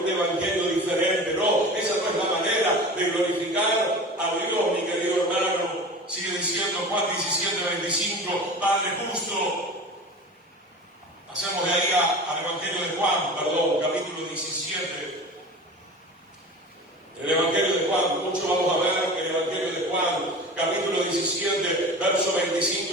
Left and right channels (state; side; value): normal; both; correlation 0.35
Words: evangelio diferente. No, esa no es la manera de glorificar a Dios, mi querido hermano. Sigue diciendo Juan 17:25, Padre justo. Pasemos de ahí al Evangelio de Juan, capítulo 17. El Evangelio de Juan, mucho vamos a ver el Evangelio de Juan, capítulo 17, versos 25